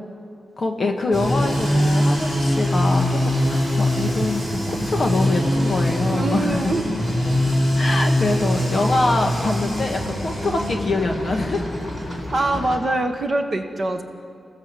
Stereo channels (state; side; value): normal; both; correlation 0.91